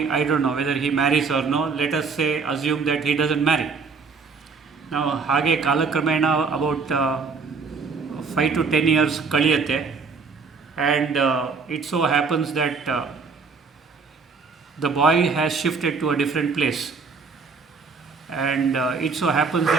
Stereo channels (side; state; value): left; quieter; 4.9 dB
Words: I don't know whether he marries or no, let us say, assume that he doesn't marry. Now, ಹಾಗೆ ಕಾಲಕ್ರಮೇಣ about 5 to 10 years ಕಳೆಯುತ್ತೆ. And it so happens that the boy has shifted to a different place. And it so happens